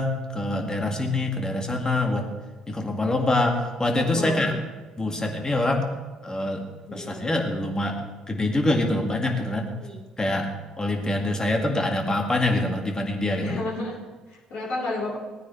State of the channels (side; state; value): both; normal; correlation 0.76